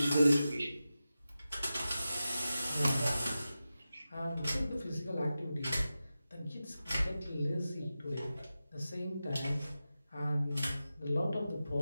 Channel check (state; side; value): inverted; both; correlation -0.93